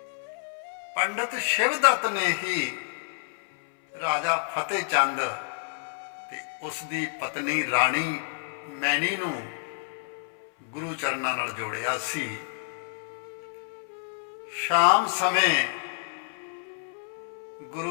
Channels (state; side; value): silent; right; 58 dB below the other